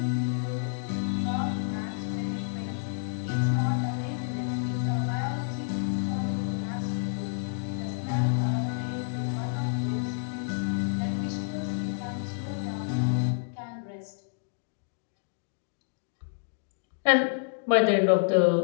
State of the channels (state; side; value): silent; right; digital silence